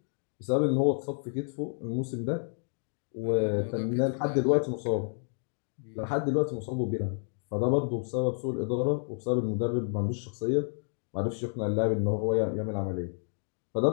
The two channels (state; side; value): silent; right; 58 dB below the other